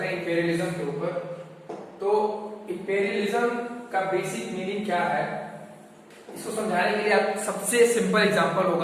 हैं इंपेरियलिज्म के ऊपर। तो इंपेरियलिज्म का बेसिक मीनिंग क्या है, इसको समझाने के लिए आप सबसे सिंपल एग्जांपल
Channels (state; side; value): identical; both; correlation 1.00